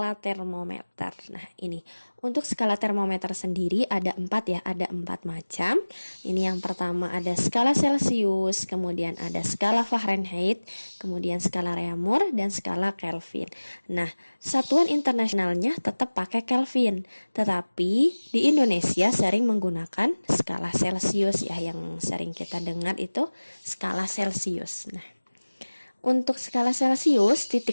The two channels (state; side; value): inverted; both; correlation -1.00